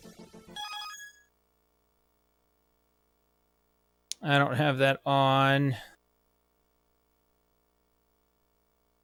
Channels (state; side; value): identical; both; correlation 1.00